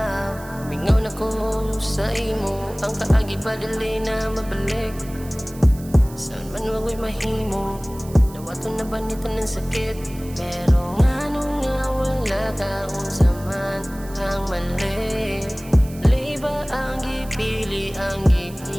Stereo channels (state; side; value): noise; right; hiss, 19 dB below the sound